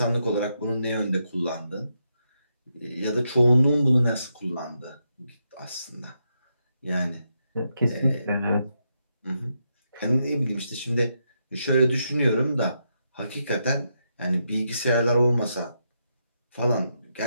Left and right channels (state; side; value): inverted; both; correlation -0.82